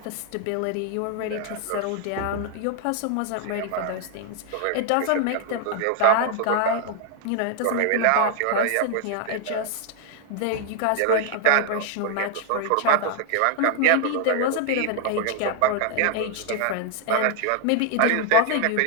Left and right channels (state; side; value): different; both; correlation 0.00